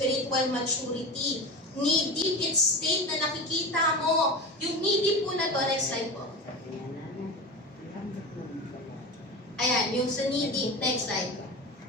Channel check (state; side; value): normal; both; correlation 0.27